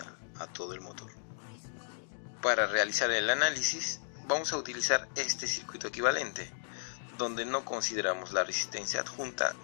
a todo el motor. Para realizar el análisis vamos a utilizar este circuito equivalente, donde no consideramos la resistencia adjunta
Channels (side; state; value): right; silent; digital silence